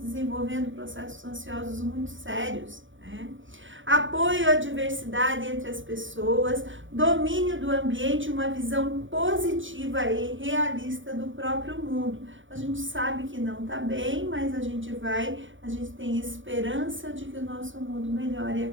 processos ansiosos muito sérios, né? Apoio à diversidade entre as pessoas, domínio do ambiente, uma visão positiva e realista do próprio mundo. A gente sabe que não está bem, mas a gente tem esperança de que o nosso mundo melhore a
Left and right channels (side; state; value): left; late; 0.56 ms